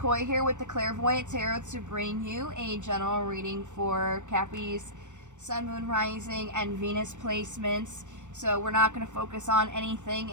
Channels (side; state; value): left; late; 0.84 ms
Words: here with the Clairvoyant Tarot to bring you a general reading for Cappy's Sun, Moon, Rising, and Venus placements. So we're not going to focus on anything